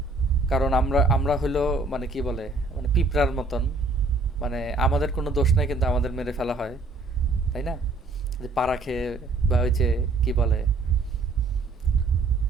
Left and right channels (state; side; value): quieter; left; 3.4 dB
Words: কারণ আমরা আমরা হইলো মানে কি বলে মানে পিঁপড়ার মতন, মানে আমাদের কোনো দোষ নাই কিন্তু আমাদের মেরে ফেলা হয়, তাই না? যে পাড়া খেয়ে বা ওই যে কি বলে